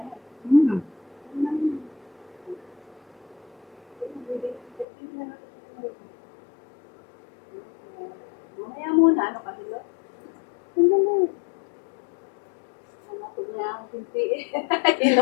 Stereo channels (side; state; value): right; drops out; at 4.9 s